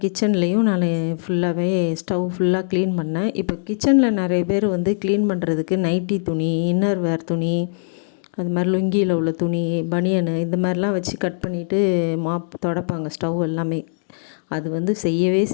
கிச்சன்லேயும் நான் ஃபுல்லாகவே ஸ்டவ் ஃபுல்லாக க்ளீன் பண்ணேன். இப்போ கிச்சனில் நிறைய பேர் வந்து க்ளீன் பண்ணுறதுக்கு நைட்டி துணி, இன்னர் வேர் துணி, அது மாதிரி லுங்கியில் உள்ள துணி, பனியனு இந்த மாதிரிலாம் வச்சு கட் பண்ணிவிட்டு மாப் துடைப்பாங்க ஸ்டவ் எல்லாமே. அது வந்து செய்யவே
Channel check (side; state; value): right; silent; digital silence